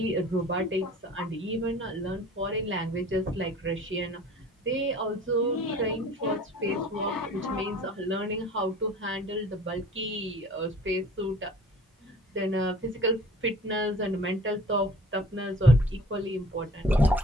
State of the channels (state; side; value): normal; both; correlation 0.47